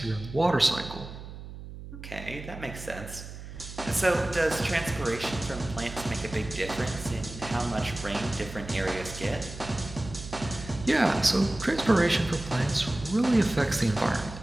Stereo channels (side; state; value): right; noise; hum, 12 dB below the sound